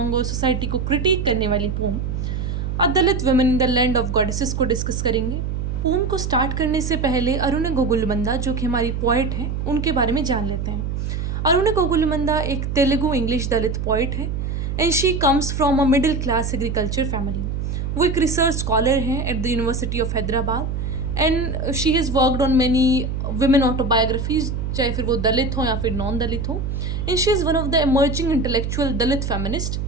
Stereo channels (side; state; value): right; noise; hum, 2 dB below the sound